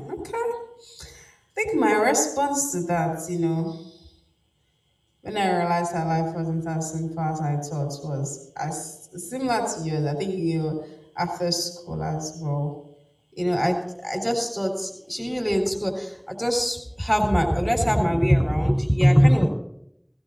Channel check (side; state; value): both; identical; correlation 1.00